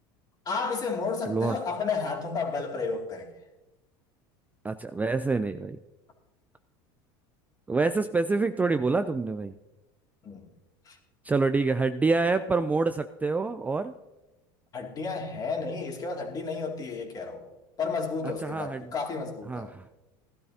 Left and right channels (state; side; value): normal; both; correlation 0.75